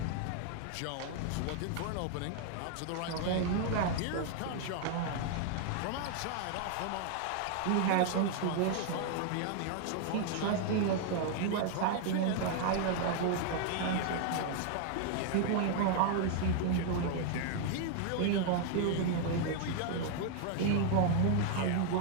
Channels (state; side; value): different; both; correlation 0.00